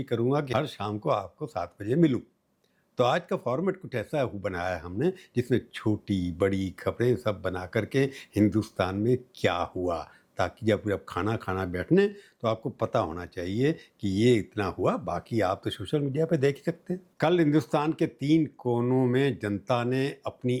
करूँगा कि हर शाम को आपको 7 बजे मिलूँ। तो आज का फॉर्मेट कुछ ऐसा बनाया है हमने, जिसमें छोटी बड़ी खबरें सब बना करके हिंदुस्तान में क्या हुआ, ताकि जब खाना बैठने तो आपको पता होना चाहिए कि ये इतना हुआ। बाकी आप तो सोशल मीडिया पे देख ही सकते हैं। कल हिंदुस्तान के 3 कोनों में जनता ने अपनी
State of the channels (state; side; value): identical; both; correlation 1.00